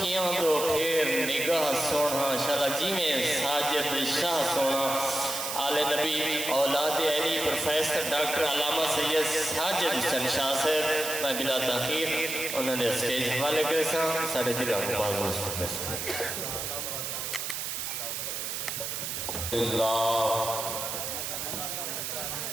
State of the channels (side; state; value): right; noise; hiss, 4 dB below the sound